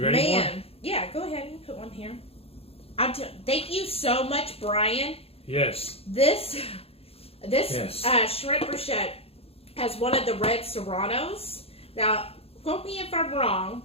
ready for one? Yeah, go ahead and put one here. Thank you so much, Brian. Yes. This Shrimp Brochette has one of the red serranos. Now, quote me if I'm wrong,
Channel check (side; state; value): right; late; 0.28 ms